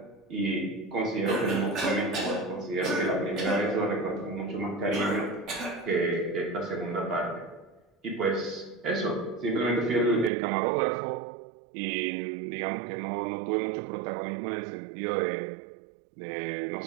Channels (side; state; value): left; drops out; at 10.3 s